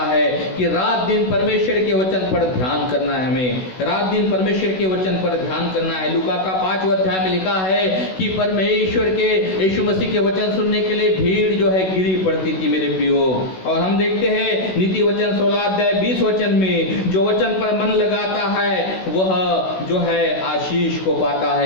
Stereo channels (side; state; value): right; late; 16 ms